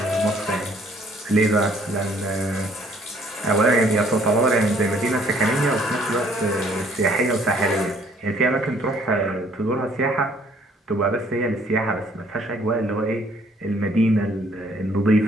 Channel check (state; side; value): normal; both; correlation 0.61